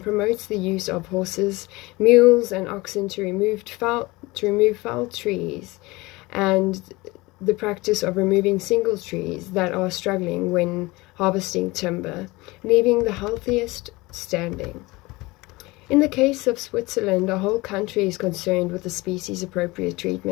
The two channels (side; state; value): right; quieter; 22.1 dB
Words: promotes the use of horses, mules, and oxen to remove foul trees, and the practice of removing single trees that are struggling when harvesting timber, leaving the healthiest standing. In the case of Switzerland, the whole country is concerned with the species-appropriate